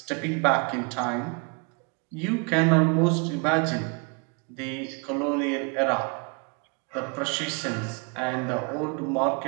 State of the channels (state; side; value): quieter; left; 33.9 dB